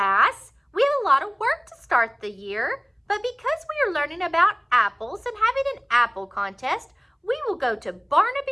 we have a lot of work to start the year. But because we are learning about apples and having an apple contest, we will go to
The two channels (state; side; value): identical; both; correlation 1.00